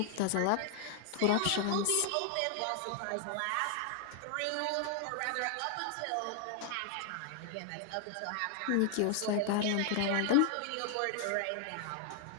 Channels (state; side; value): different; both; correlation 0.00